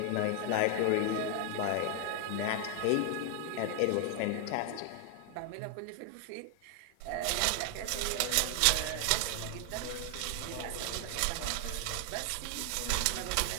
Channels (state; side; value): different; both; correlation 0.00